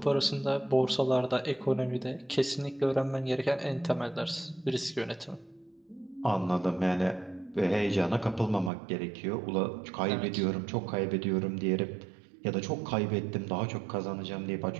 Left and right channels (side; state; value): left; drops out; at 8.7 s